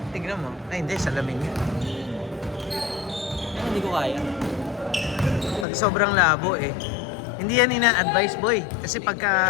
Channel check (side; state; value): right; drops out; at 5.7 s